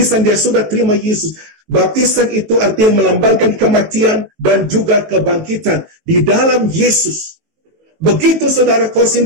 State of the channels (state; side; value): late; left; 18 ms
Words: dia sudah terima Yesus. Baptisan itu artinya melambangkan kematian dan juga kebangkitan di dalam Yesus. Begitu saudara